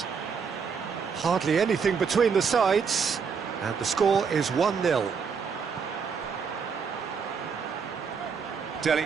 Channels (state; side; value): quieter; left; 6.0 dB